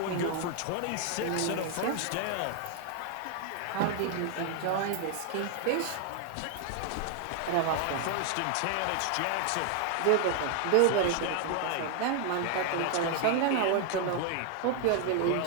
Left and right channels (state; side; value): different; both; correlation 0.00